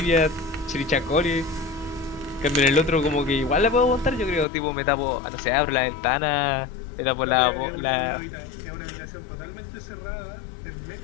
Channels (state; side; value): drops out; right; at 4.5 s